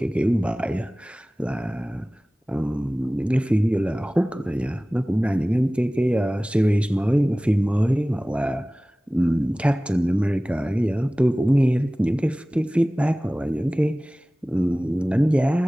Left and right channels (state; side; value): normal; both; correlation 0.98